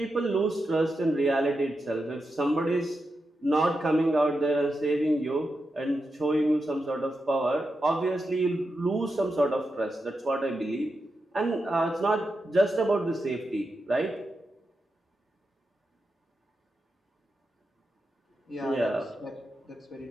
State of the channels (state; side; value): normal; both; correlation 0.88